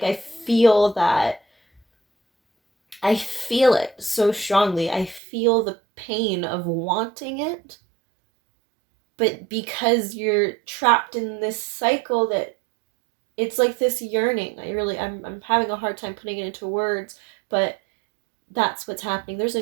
I feel it so strongly. I feel the pain of wanting it. But because you're trapped in this cycle, that it's like this yearning. I'm having a hard time putting it into words, but that's what's happening. There's a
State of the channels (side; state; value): left; drops out; at 5.2 s